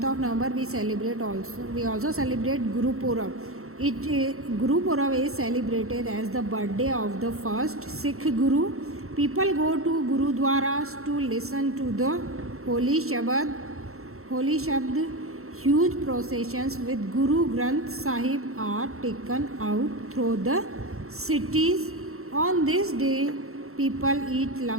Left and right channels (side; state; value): left; late; 0.63 ms